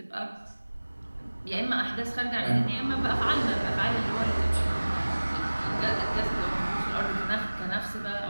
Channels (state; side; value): inverted; both; correlation -1.00